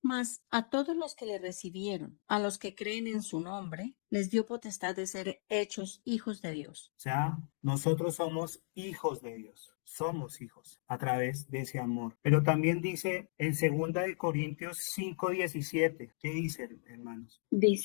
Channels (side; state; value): right; silent; digital silence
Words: Mas a todos los que le recibieron, a los que creen en su nombre, les dio potestad de ser hechos hijos de Dios. O sea, nosotros somos hijos de Dios, somos hijos a través de ese amor. Pero también dice en 2 Corintios 5:17, ¿qué dice, hermanos?